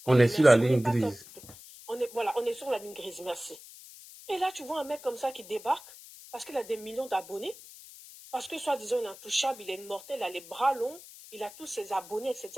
On est sur la ligne grise. Voilà, on est sur la ligne grise, merci. Et là, tu vois un mec comme ça qui débarque parce qu'il a des millions d'abonnés, parce que soi-disant il est intouchable, il est immortel, il a les bras longs, il a tous ses abonnés,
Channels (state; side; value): noise; left; hiss, 18 dB below the sound